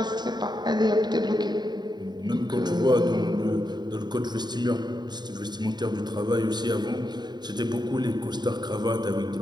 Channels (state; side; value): late; left; 0.21 ms